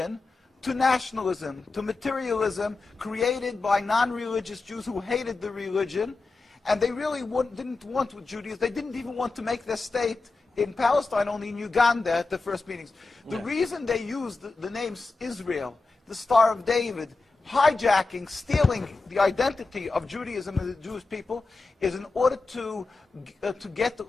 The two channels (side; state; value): right; quieter; 3.7 dB